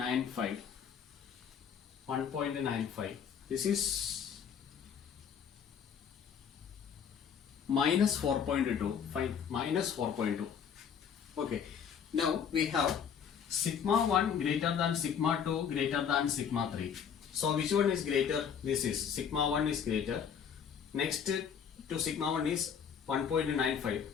1.95. This is minus 4.2. Fine. Minus 4.2. Okay. Now we have sigma 1 greater than sigma 2 greater than sigma 3. So which one is greater? This is sigma 1 is greater. Next to sigma 1 is 1.95,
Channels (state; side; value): quieter; right; 7.6 dB